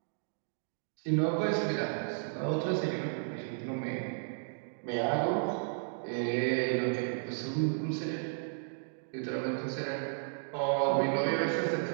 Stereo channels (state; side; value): silent; left; digital silence